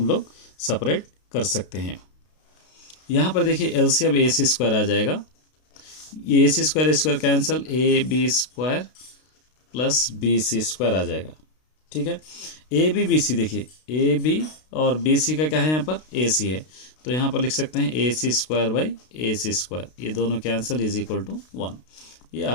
लोग सेपरेट कर सकते हैं। यहाँ पर देखिए एलसीएम ए सी स्क्वायर आ जाएगा, ये A C square cancel, A B square plus B C square आ जाएगा, ठीक है। ए बी सी, देखिए ए बी और बी सी का क्या है यहाँ पर, ए सी है, तो यहाँ पर लिख सकते हैं A C square by A C square, ये दोनों कैंसिल इज इक्वल टू 1, ये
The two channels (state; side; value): late; right; 32 ms